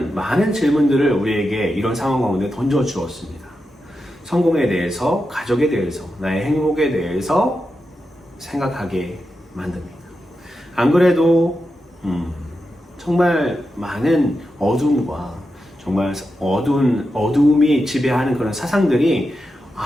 많은 질문들을 우리에게 이런 상황 가운데 던져주었습니다. 성공에 대해서, 가족에 대해서, 나의 행복에 대해서 생각하게 만듭니다. 안 그래도 정말 많은 어둠과 정말 어두움이 지배하는 그런 사상들이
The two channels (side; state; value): both; normal; correlation 0.89